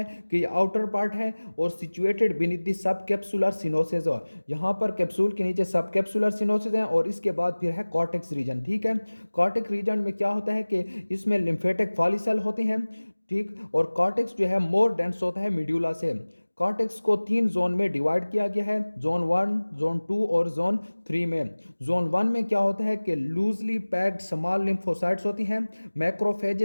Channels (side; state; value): both; inverted; correlation -1.00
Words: कि ये आउटर पार्ट है और situated beneath the subcapsular sinuses. यहाँ पर कैप्सूल के नीचे सब कैप्सुलर सिनोसिस हैं और इसके बाद फिर है कॉर्टेक्स रीजन। ठीक है, कॉर्टेक्स रीजन में क्या होता है कि इसमें लिम्फेटिक फॉलिकल होते हैं। ठीक, और कॉर्टेक्स जो है मोर डेंस होता है मिड्यूला से। कॉर्टेक्स को 3 जोन में डिवाइड किया गया है, जोन 1, जोन 2 और जोन 3 में। जोन 1 में क्या होता है कि लूजली पैक्ड स्मॉल लिम्फोसाइट्स होती हैं,